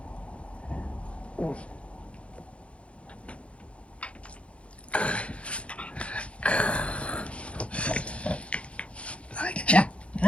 I get you.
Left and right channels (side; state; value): right; late; 0.061 ms